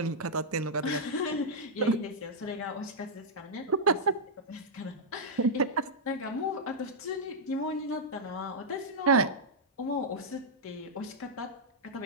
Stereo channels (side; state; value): both; normal; correlation -0.07